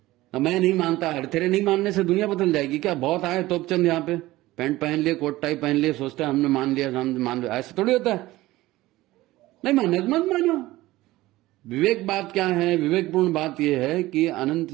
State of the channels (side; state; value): left; quieter; 17.7 dB